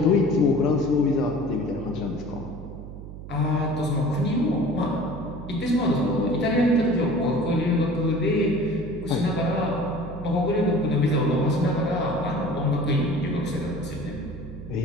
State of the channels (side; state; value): right; noise; hum, 12 dB below the sound